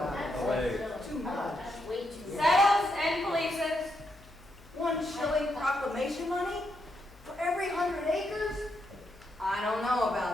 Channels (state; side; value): noise; left; hum, 24 dB below the sound